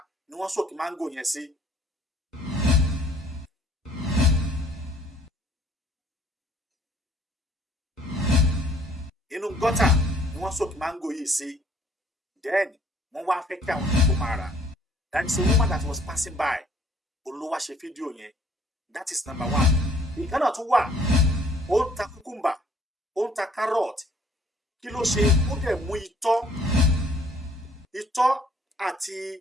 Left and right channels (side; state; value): both; normal; correlation 0.59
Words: ni wọ́n soak mango yẹn sí. Inú gọ́tà ni wọ́n soak mango yìí sí. Then wọ́n wá fẹ́ kí àwọn èèyàn máa rà. That is a woman that was passing by. Olówó ṣe fídíò yẹn. That is number one. Ìkànnà tún wà. Ó ń ta cucumber. Ó ń ta carrot. Kí ló ṣe ó dẹ̀ mú itọ́